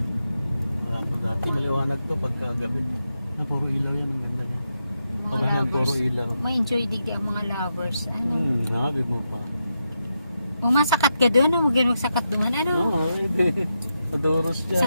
Wala to dati, maliwanag to pagkagabi. Puro ilaw yun, ang ganda niya. Mga Pag yan, puro lovers. ilaw. May enjoy digdi ang mga lovers. Ano? Nabi mo pa. Kung masakat ka doon, huwag yan magsakat doon. Ano? Oo, hindi. Adoros dyan.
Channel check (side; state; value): both; inverted; correlation -0.85